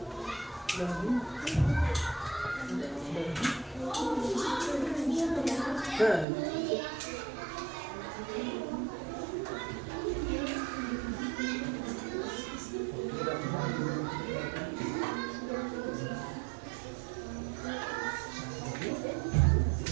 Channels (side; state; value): left; drops out; at 6.2 s